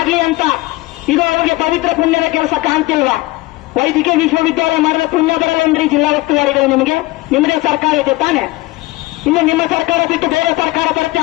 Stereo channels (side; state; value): right; quieter; 20.3 dB